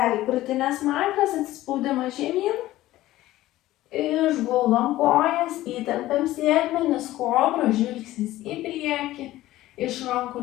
krūtinės smakras, atsispaudimas žemyn, išguldom kojas, įtempiam sėdmenis, kobra, žvilgsnis į priekį, iš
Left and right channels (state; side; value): quieter; right; 15.8 dB